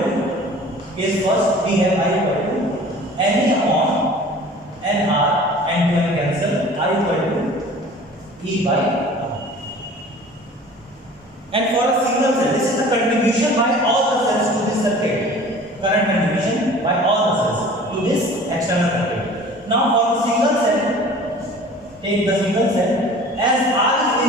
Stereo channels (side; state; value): both; normal; correlation 0.45